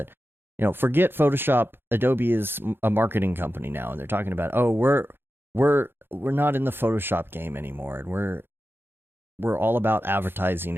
you know, forget Photoshop. Adobe is a marketing company now, and they're talking about, oh, we're not in the Photoshop game anymore, and we're all about advertising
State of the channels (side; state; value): left; late; 0.10 ms